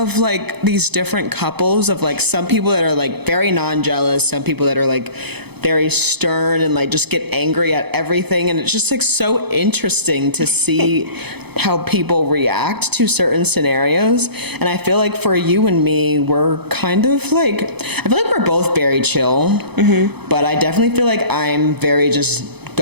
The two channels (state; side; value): late; left; 0.98 ms